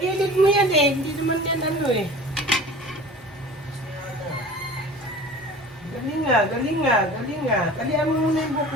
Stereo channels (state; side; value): normal; both; correlation 0.40